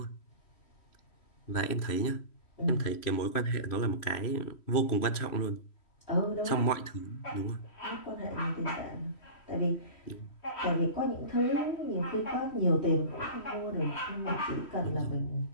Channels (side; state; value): right; late; 3.1 ms